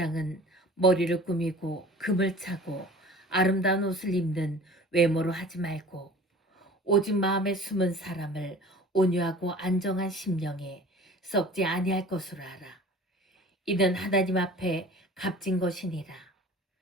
머리를 꾸미고 금을 차고 아름다운 옷을 입는 외모로 하지 말고 오직 마음에 숨은 사람을 온유하고 안정한 심령에 썩지 아니할 것으로 알아. 이는 하나님 앞에 값진 것이니라.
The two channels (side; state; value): both; normal; correlation 0.43